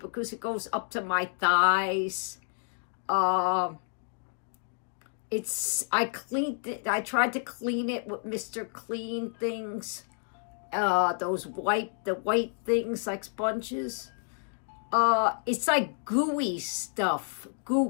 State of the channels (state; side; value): silent; right; 58 dB below the other